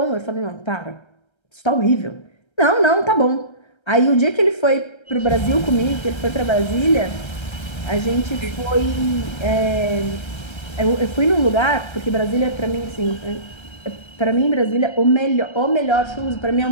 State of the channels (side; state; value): right; late; 1.3 ms